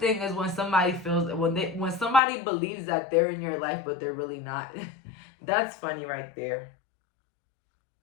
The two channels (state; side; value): drops out; right; at 2.2 s